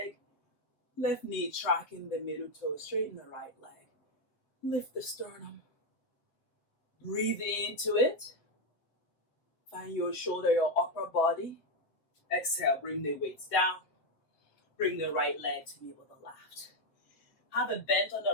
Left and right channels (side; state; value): right; late; 7.7 ms